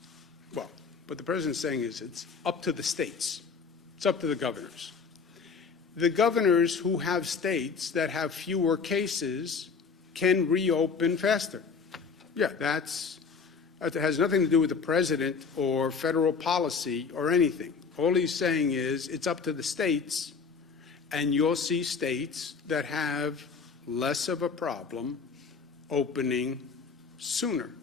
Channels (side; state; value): right; quieter; 5.4 dB